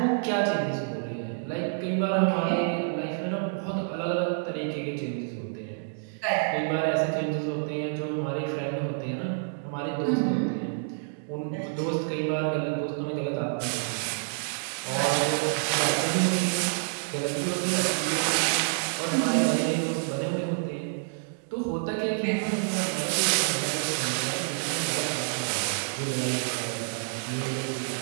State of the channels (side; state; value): left; silent; digital silence